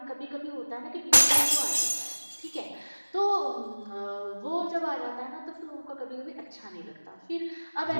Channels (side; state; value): both; inverted; correlation -1.00